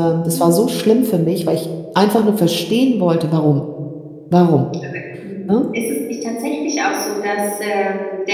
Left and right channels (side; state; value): both; identical; correlation 1.00